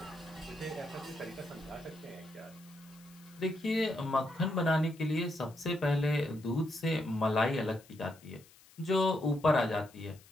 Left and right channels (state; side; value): noise; left; hiss, 25 dB below the sound